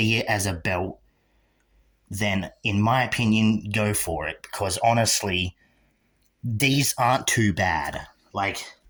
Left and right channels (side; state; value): both; identical; correlation 1.00